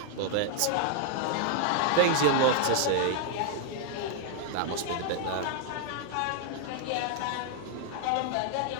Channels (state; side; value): different; both; correlation 0.00